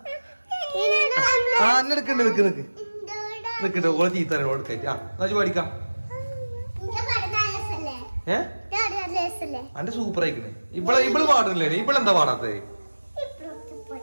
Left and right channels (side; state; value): both; inverted; correlation -1.00